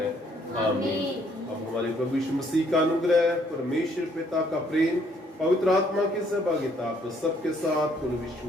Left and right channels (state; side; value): normal; both; correlation 0.66